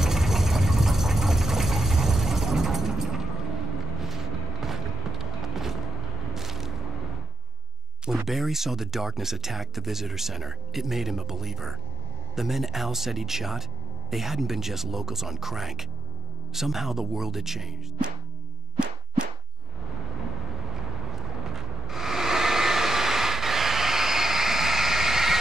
When Barry saw the darkness attack the visitor center, it made him a believer. The men Al said he'd shot, they hadn't been just locals on crank. Somehow the world had changed.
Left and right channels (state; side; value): normal; both; correlation 0.82